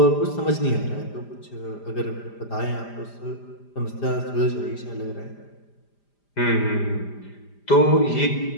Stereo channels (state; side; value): late; right; 5.0 ms